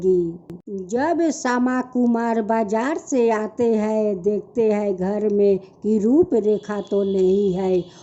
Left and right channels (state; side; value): identical; both; correlation 1.00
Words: जब श्यामा कुमार बाजार से आते हैं देखते हैं घर में कि रूप रेखा तो नहीं है।